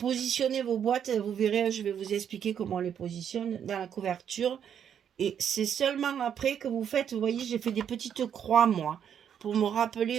vos boîtes, vous verrez, je vais vous expliquer comment on les positionne dans la couverture. Et c'est seulement après que vous faites, vous voyez, j'ai fait des petites croix, moi, pour me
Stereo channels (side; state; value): left; quieter; 8.6 dB